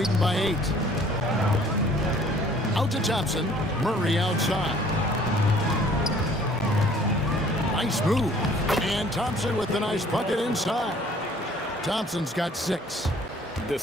by 8. Out to Thompson. Murray outside. Nice move. And Thompson with the nice bucket inside. Thompson's got 6.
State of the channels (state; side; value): normal; both; correlation 0.56